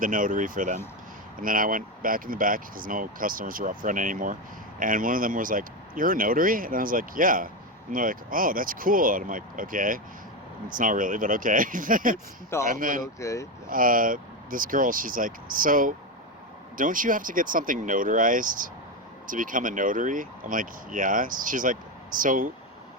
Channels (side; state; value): both; normal; correlation 0.13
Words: notary for them. And then I went back in the back because no customers were up front anymore. And one of them was like, "You're a notary?" And I was like, "Yeah." And they're like, "Oh, that's cool." And I'm like, "Okay." It's not really, but okay. It's not, And then, but okay. This girl, she's like, "So, don't you have to get something notarized to become a notary?" I'm like, "Yeah." She's like, "So,